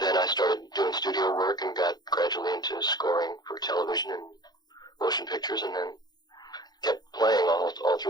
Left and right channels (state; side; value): late; right; 0.20 ms